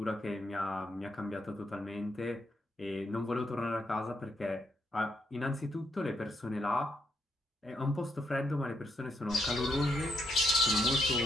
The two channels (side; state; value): both; normal; correlation 0.77